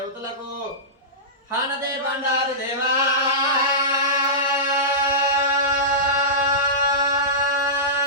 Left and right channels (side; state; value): both; normal; correlation -0.17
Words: హానదే బండారు దేవా